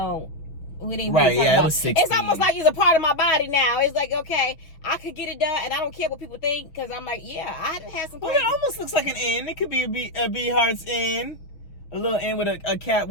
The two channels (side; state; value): right; late; 6.2 ms